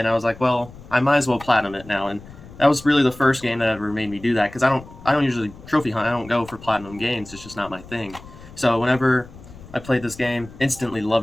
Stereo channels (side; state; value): left; noise; rumble, 18 dB below the sound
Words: I was like, well, I might as well platinum it now. And that was really the first game that ever made me do that, because I don't usually trophy hunt. I don't go for platinum games. It's just not my thing. So whenever I played this game, instantly